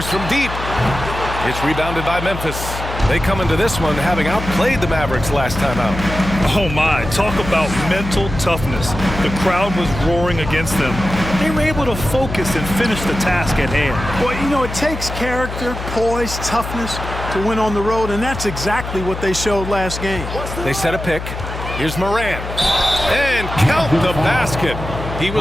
from deep. It's rebounded by Memphis. They come into this one having outplayed the Mavericks last time out. Oh my, talk about mental toughness. The crowd was roaring against them. They were able to focus and finish the task at hand. Well, you know, it takes character, poise, toughness to win on the road, and that's exactly what they showed last game. They set a pick. Here's Morant. And count the basket. He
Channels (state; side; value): noise; left; hum, 8 dB below the sound